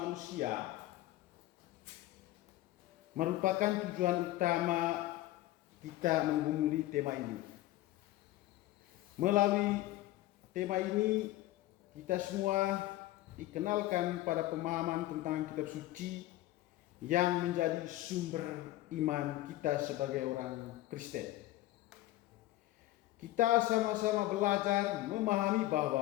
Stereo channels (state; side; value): quieter; right; 16.0 dB